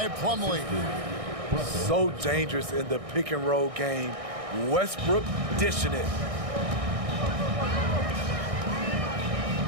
Plumlee. So dangerous in the pick and roll game. Westbrook dishing it.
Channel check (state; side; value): late; left; 1.6 ms